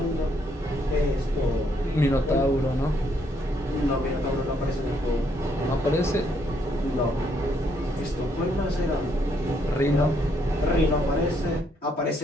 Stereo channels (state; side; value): normal; both; correlation 0.72